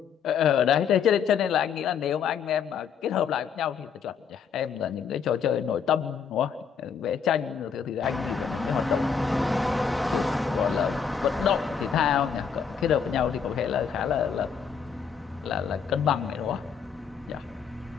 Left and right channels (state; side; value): quieter; right; 6.8 dB